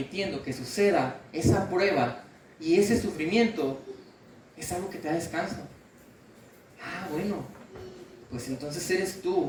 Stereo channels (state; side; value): identical; both; correlation 1.00